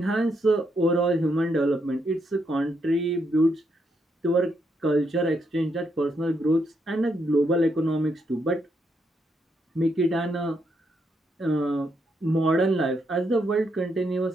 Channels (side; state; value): both; normal; correlation 0.78